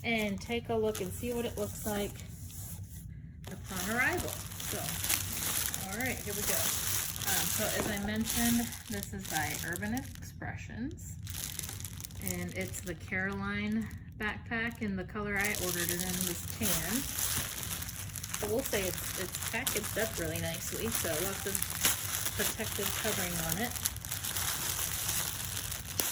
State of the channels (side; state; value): both; identical; correlation 1.00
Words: and take a look and see what it looks like upon arrival. So, all right, here we go. So as I mentioned, this is by Urban Expressions, and it's the Caroline backpack, and the color I ordered it in was tan. I will say it's packaged up really nicely, so lots of protective covering on it.